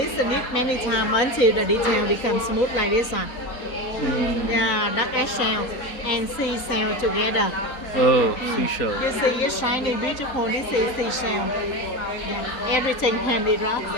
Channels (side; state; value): right; late; 3.8 ms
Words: it many times until the detail becomes smooth like this one. Yeah, duck eggshell and seashell together. Oh, seashell. You see, it's shiny, beautiful. This is seashell. Yeah, everything handicraft.